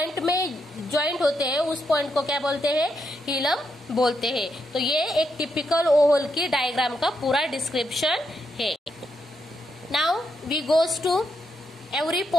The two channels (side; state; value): both; normal; correlation 0.81